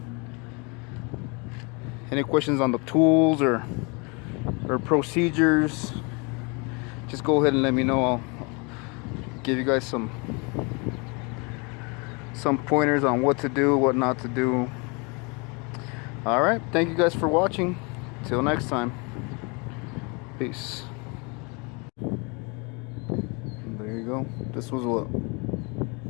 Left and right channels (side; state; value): right; quieter; 30.9 dB